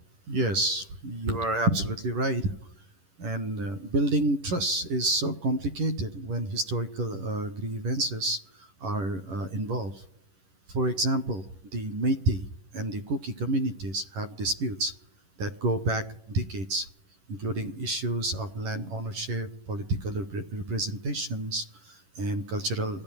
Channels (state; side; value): late; left; 11 ms